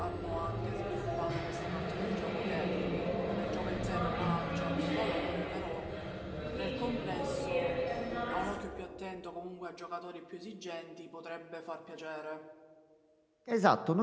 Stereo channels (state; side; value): identical; both; correlation 1.00